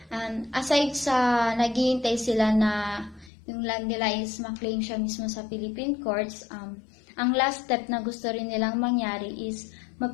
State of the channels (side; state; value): right; drops out; at 3.3 s